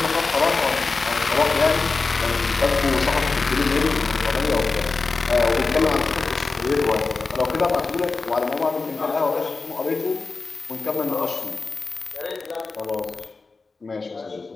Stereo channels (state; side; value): quieter; right; 4.0 dB